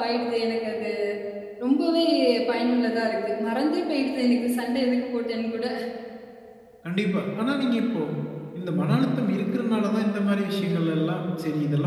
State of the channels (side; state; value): both; identical; correlation 1.00